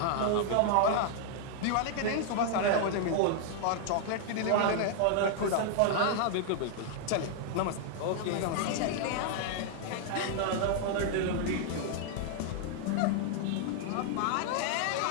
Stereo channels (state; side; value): different; both; correlation 0.00